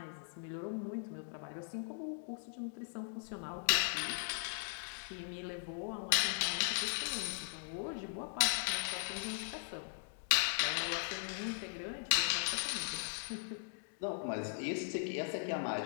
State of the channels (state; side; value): silent; right; digital silence